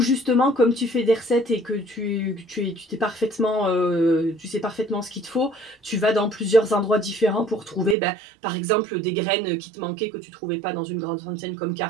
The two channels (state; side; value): drops out; left; at 8.0 s